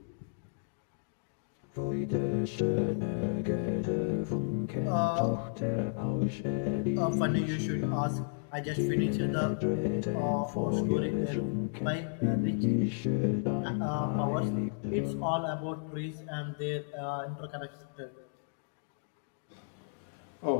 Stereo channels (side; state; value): right; silent; digital silence